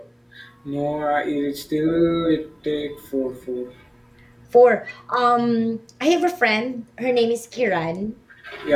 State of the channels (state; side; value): identical; both; correlation 1.00